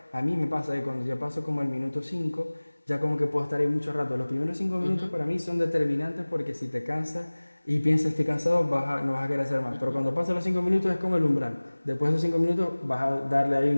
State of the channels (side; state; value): both; inverted; correlation -1.00